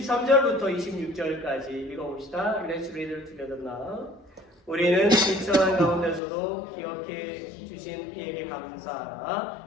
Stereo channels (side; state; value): right; drops out; at 6.2 s